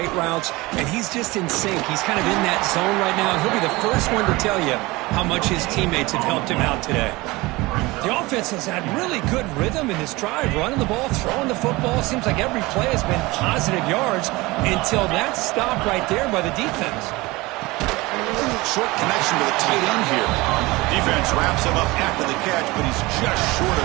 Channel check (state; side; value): quieter; left; 21.7 dB